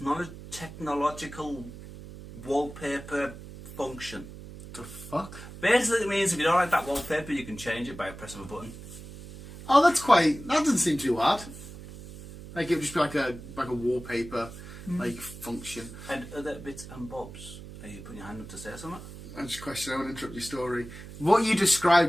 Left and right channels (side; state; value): right; noise; hum, 14 dB below the sound